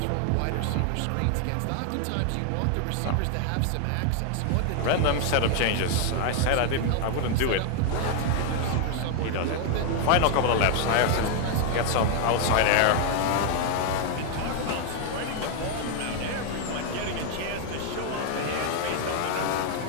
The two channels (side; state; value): both; different; correlation 0.00